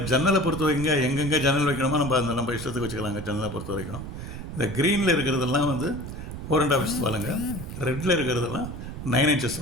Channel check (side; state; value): right; noise; rumble, 9 dB below the sound